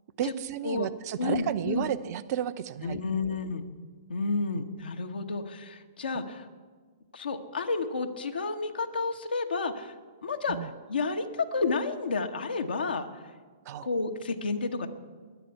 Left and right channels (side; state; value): both; inverted; correlation -0.58